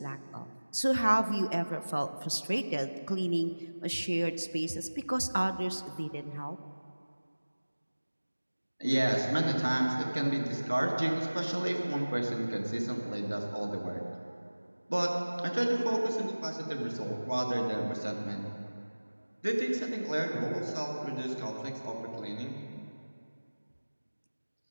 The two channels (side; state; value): both; inverted; correlation -1.00